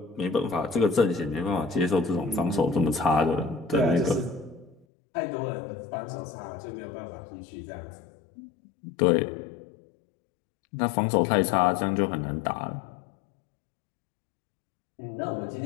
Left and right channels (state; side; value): drops out; right; at 4.9 s